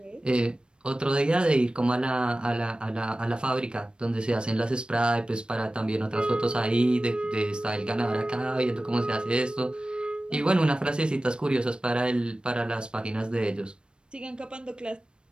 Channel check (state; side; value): late; left; 0.053 ms